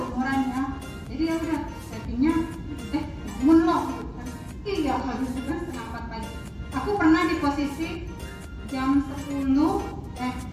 ya. Jadi ya udah chattingnya bangun loh gitu kan. Iya habis itu kan setengah 4 pagi. Aku pernah di posisi jam 10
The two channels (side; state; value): both; identical; correlation 1.00